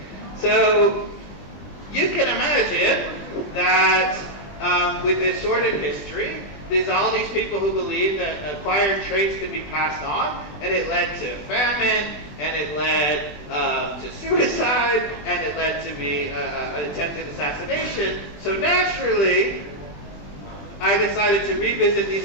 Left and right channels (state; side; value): late; right; 20 ms